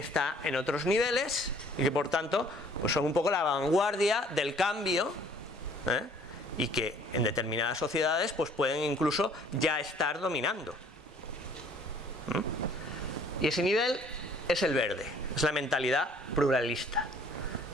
en otros niveles y que por tanto pues son un poco la vanguardia del cambio, y que en determinadas sociedades pues pueden incluso ya estar dominando. Y ese nivel es el verde, es la mentalidad pluralista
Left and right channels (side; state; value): both; normal; correlation 0.57